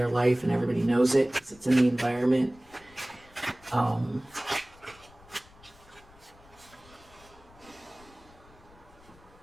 life and everybody knows it because it's in the environment.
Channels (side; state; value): left; noise; rumble, 25 dB below the sound